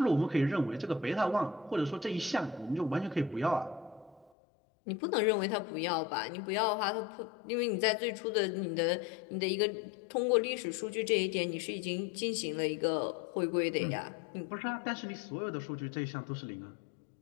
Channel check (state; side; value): drops out; right; at 4.3 s